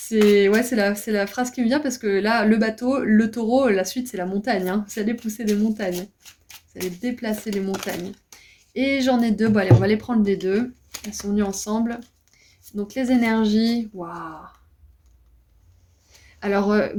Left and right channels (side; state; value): both; identical; correlation 1.00